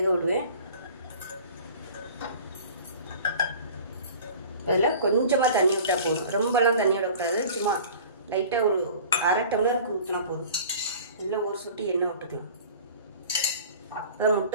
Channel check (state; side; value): inverted; both; correlation -0.43